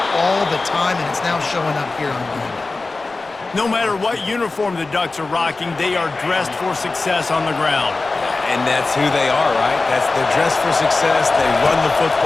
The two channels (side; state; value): right; quieter; 3.5 dB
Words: all the time, and it's now showing up here on game. No matter what uniform the Ducks are rocking, they are dressed for success on the ground. And that's who they are, right? They're dressed for success. They run the